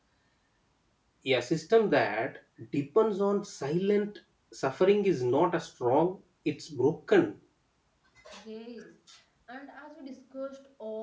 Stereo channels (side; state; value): both; identical; correlation 1.00